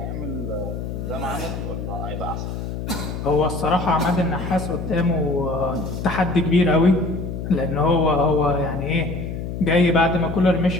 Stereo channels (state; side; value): noise; left; hum, 6 dB below the sound